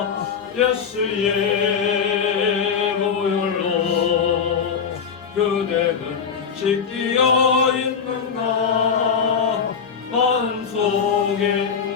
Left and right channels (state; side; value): quieter; right; 6.5 dB